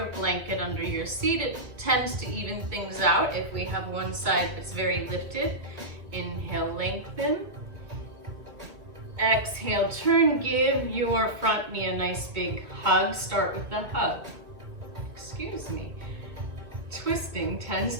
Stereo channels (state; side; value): late; left; 2.4 ms